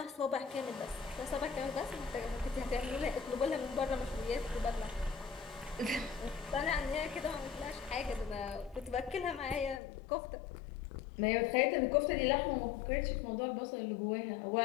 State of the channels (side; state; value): right; drops out; at 9.8 s